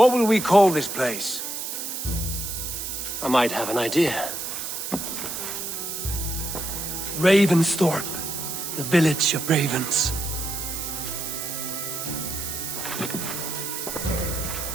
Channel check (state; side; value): noise; right; hiss, 5 dB below the sound